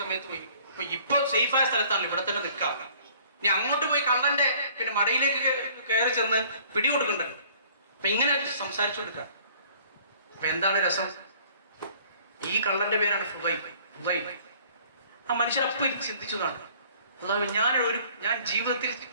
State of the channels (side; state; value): both; inverted; correlation -0.55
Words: സമയത്ത് പോയി ഇപ്പൊ സേഫായ സ്ഥലത്താണല്ലോ, ഇവിടെ തന്നെ നിൽക്കാം. ഇനി അങ്ങോട്ട് പോയി കള്ളന്റെ പിന്നെ മടയിലേക്ക് കയറി ചെന്ന് പിടികൊടുക്കണ്ടല്ലോ. അപ്പൊ ഇങ്ങനെ സംസാരിച്ചു കൊടുക്കുക. അപ്പൊ എന്താണ് രസം? ഈ കള്ളന്റെ പേരാണ് ഫുദൈൽ. ആ മനുഷ്യർ അപ്പം ചിന്തിച്ചതാണ്, അല്ലാതെ ഞാൻ ജീവിതത്തിൽ